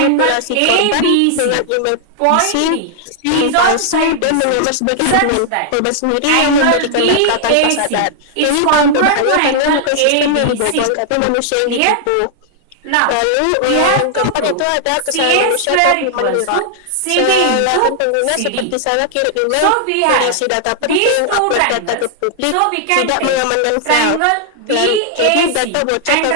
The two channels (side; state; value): both; different; correlation -0.01